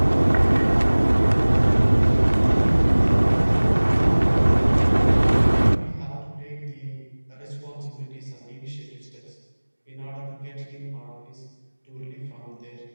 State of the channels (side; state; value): both; inverted; correlation -1.00